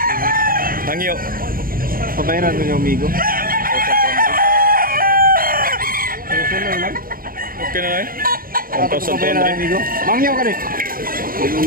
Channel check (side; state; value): left; late; 0.42 ms